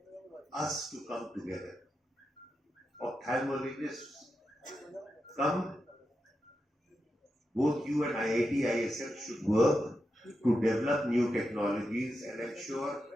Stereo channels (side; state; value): both; normal; correlation 0.88